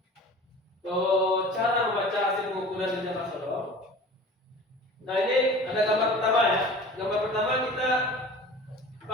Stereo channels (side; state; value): both; normal; correlation 0.40